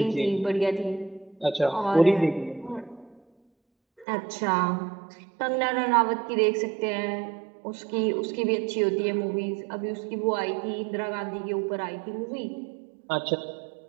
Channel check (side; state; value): left; drops out; at 4.0 s